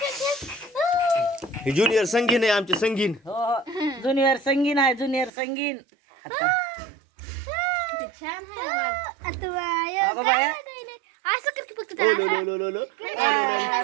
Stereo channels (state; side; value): drops out; left; at 5.3 s